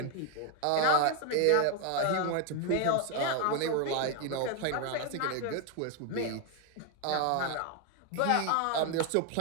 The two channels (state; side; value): different; both; correlation 0.01